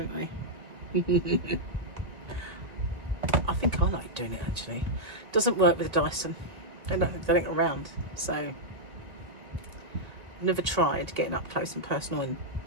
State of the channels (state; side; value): late; left; 1.8 ms